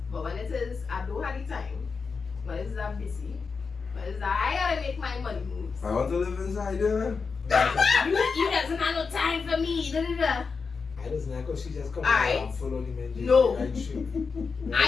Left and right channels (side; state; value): right; quieter; 5.0 dB